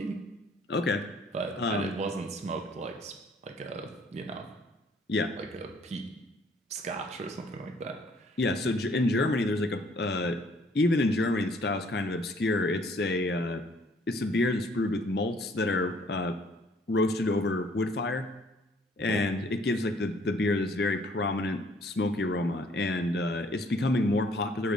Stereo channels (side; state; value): both; normal; correlation 0.61